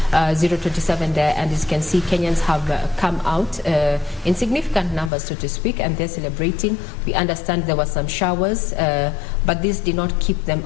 there, and as you can see, Kenyans have come out in significant numbers, so to speak, and they're celebrating. We understand there were some showers, but this did not keep them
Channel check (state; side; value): drops out; right; at 5.1 s